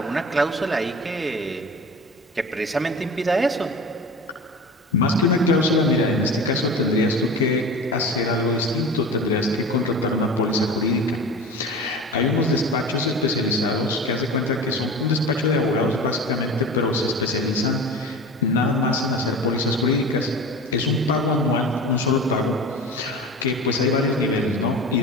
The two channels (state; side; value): normal; both; correlation 0.34